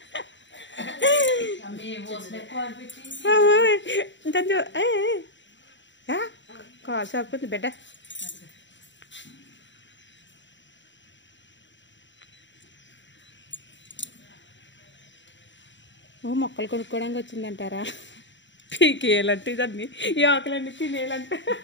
కాల్ సరిపోతుంది బిడ్డ మొక్కలు కొనుక్కోవడానికి వచ్చిందంటారా పీకేయాలంటే దాన్ని ఈ ఆకులన్నీ తినేయాలంటే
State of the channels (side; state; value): right; late; 0.54 ms